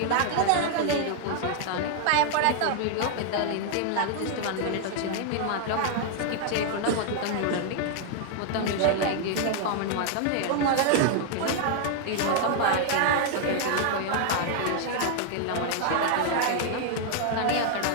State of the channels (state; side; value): different; both; correlation 0.00